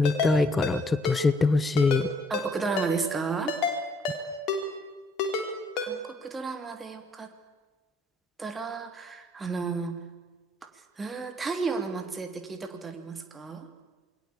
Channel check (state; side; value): normal; both; correlation 0.66